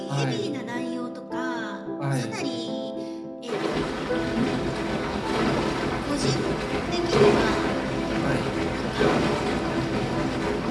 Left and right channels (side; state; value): both; identical; correlation 1.00